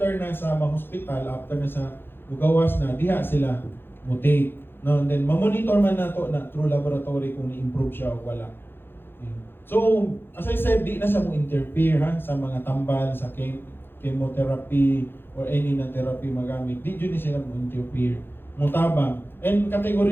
na sa hospital, after na sa mugawas na diha sila mutate. No, and then ma-monitor man nato na through laboratory kung ni-improve siya o wala. So, as I said, di na siya mo interfere sa mga tambal, sa chemotherapy or any na therapy magamit. Di yun siya mo interfere. Mutabang. And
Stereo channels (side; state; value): right; late; 0.10 ms